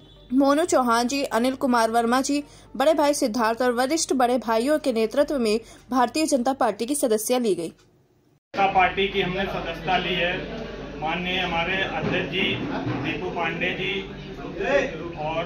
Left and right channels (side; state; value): both; identical; correlation 1.00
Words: चौहान जी, अनिल कुमार वर्मा जी, बड़े भाई सिद्धार्थ और वरिष्ठ बड़े भाइयों के नेतृत्व में भारतीय जनता पार्टी की सदस्यता ली गई। पार्टी की हमने सदस्यता ली है। माननीय हमारे अध्यक्ष जी दीपू पांडे जी और